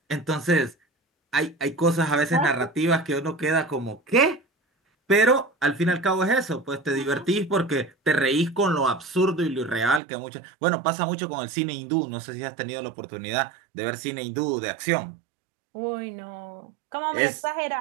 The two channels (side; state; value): left; drops out; at 10.0 s